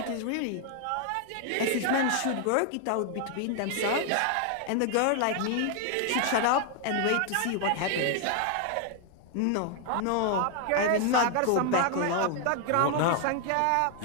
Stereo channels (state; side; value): different; both; correlation 0.00